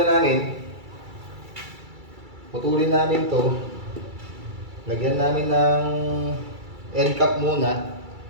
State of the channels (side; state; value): left; late; 2.3 ms